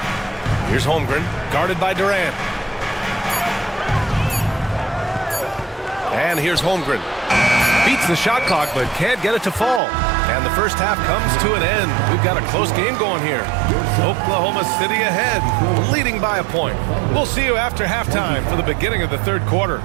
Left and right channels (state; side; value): drops out; left; at 9.8 s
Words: Here's Holmgren, guarded by Durant. And here's Holmgren. Beats the shot clock, but can't get it to fall. And the first half comes to an end. We've got a close game going here. Oklahoma City ahead, leading by a point. We'll see you after halftime for the beginning of the third quarter.